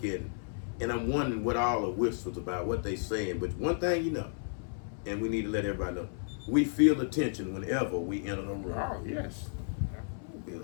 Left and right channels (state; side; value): silent; right; 56 dB below the other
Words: at. And I'm wondering what all the whispers about, what they saying. But one thing you know, and we need to let everybody know, we feel the tension whenever we enter the room. Oh, yes. You